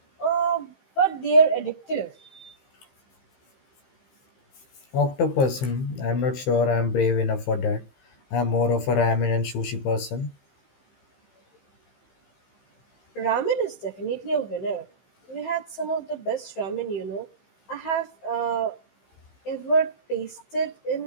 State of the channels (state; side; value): late; right; 15 ms